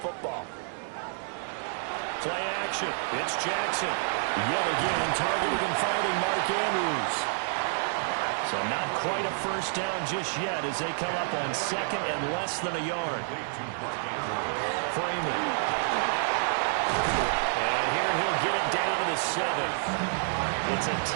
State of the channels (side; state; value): left; silent; 59 dB below the other